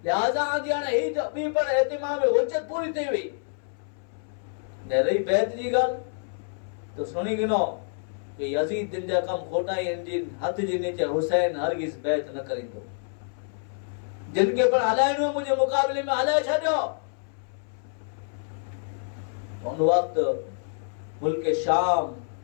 लिहाजा आजी हाने ही बी पण एतिमाम में हुज्जत पूरी थई हुई ने रही बैत जी गल तो सुनी गिनो कि यजीद दिन जा कम खोटा इंजिन हथ जी नीचे हुसैन हरगिज बैत न करिंदो, जिनके पर हलाइनो मुझे मुकाबले में हलाए छड्यो। उन वक्त मुल्क शाम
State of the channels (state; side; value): silent; right; 60 dB below the other